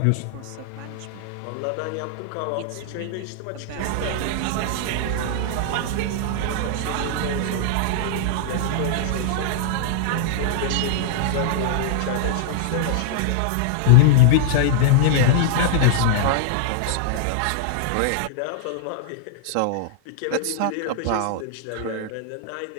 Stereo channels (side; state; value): both; different; correlation -0.01